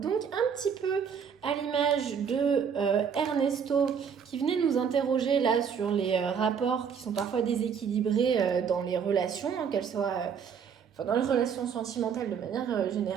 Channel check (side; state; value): left; quieter; 7.0 dB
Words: Donc un petit peu à l'image de Ernesto qui venait nous interroger là sur les rapports qui sont parfois déséquilibrés dans les relations, hein, qu'elles soient dans les relations sentimentales de manière